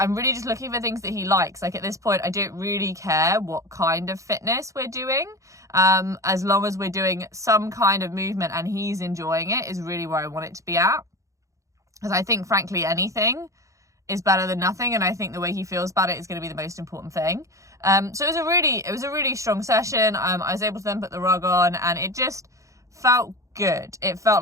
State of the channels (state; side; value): late; left; 0.15 ms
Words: really just looking for things that he likes. Like, at this point, I don't really care what kind of fitness we're doing. As long as we're doing some kind of movement and he's enjoying it is really where I want it to be at. Because I think, frankly, anything is better than nothing, and I think the way he feels about it is going to be the most important thing. So it was a really strong session. I was able to then put the rug on, and it just felt good. It felt